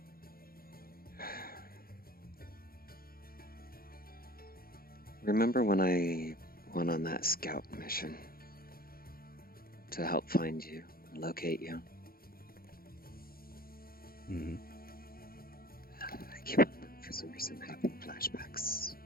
Remember when I went on that scout mission to help find you and locate you? I keep on, for some reason, having flashbacks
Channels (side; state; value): right; late; 0.43 ms